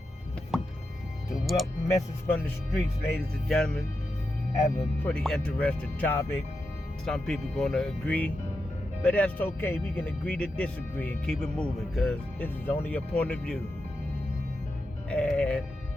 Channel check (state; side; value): normal; both; correlation 0.88